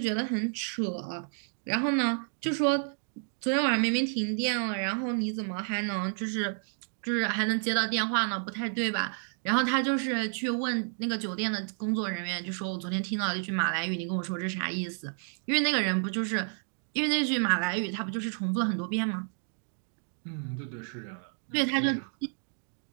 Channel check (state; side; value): silent; left; 57 dB below the other